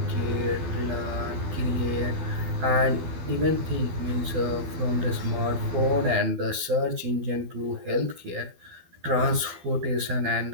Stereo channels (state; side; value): late; left; 12 ms